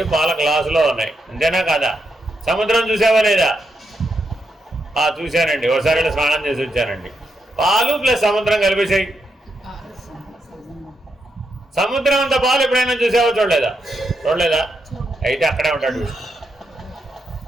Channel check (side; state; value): both; normal; correlation 0.82